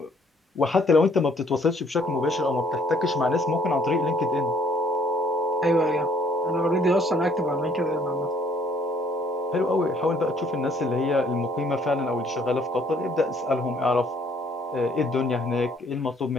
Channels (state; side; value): normal; both; correlation 0.63